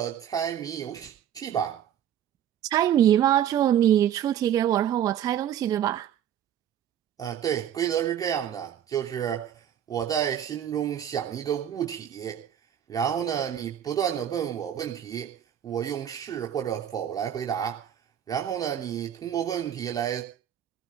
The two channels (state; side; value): quieter; left; 10.1 dB